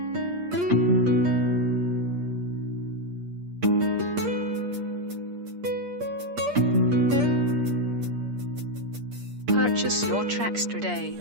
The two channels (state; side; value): late; left; 8.5 ms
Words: Purchase your tracks today.